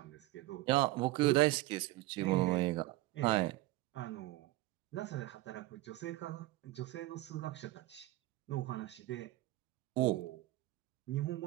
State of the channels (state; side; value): quieter; left; 18.3 dB